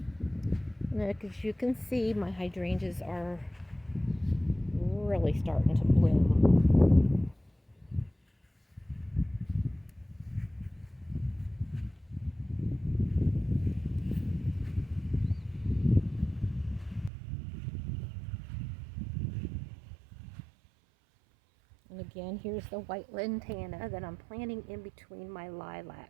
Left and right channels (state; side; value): drops out; left; at 17.1 s